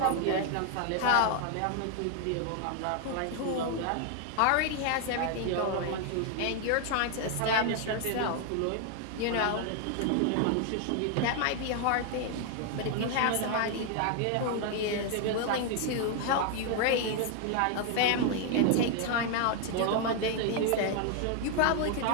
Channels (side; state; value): both; different; correlation 0.00